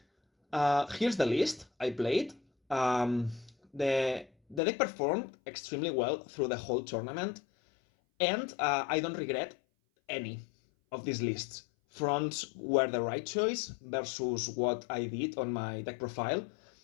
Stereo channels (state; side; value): drops out; right; at 4.6 s